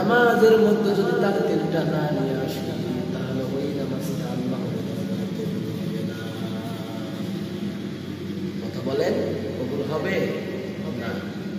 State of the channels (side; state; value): both; identical; correlation 1.00